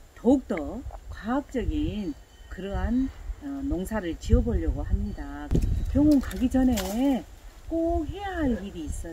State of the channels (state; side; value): identical; both; correlation 1.00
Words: 더욱더 과학적인 그러한 농사를 지어보려고 합니다. 병원 가기 전에 꼭 해야 할 일이